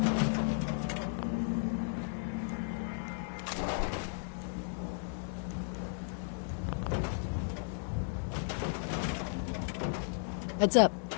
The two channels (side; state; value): right; silent; digital silence